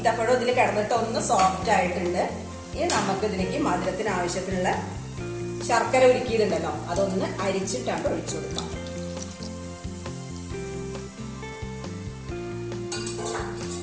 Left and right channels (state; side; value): identical; both; correlation 1.00